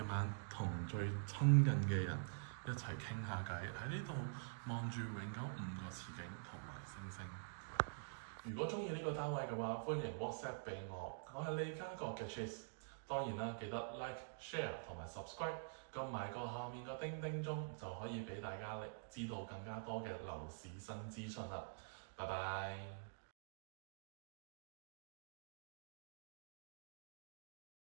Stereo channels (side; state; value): left; silent; digital silence